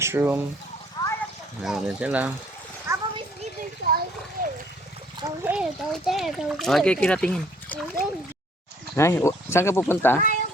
Meron din sila. Papa, may sleeping siya. Go here, go there, go there. Okay, kiratingin. Go there. Ay, saan ka pupunta?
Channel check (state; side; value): normal; both; correlation 0.60